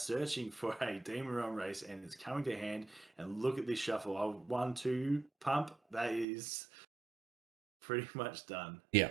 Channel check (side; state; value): left; drops out; at 6.2 s